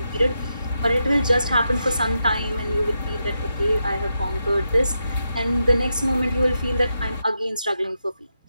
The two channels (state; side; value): inverted; both; correlation -0.86